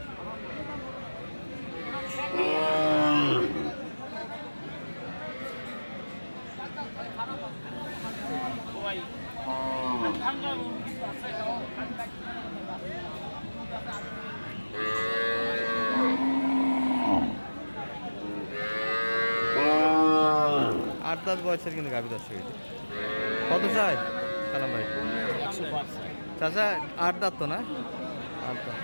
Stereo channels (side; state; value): both; inverted; correlation -1.00